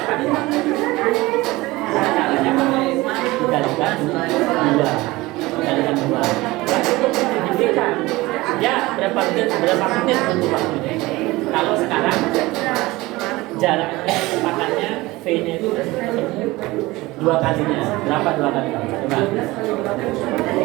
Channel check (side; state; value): left; quieter; 20.3 dB